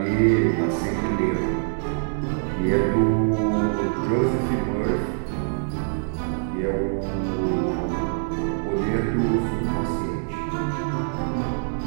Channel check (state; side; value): silent; left; digital silence